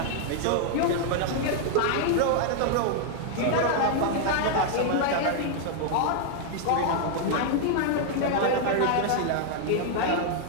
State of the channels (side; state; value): both; different; correlation 0.00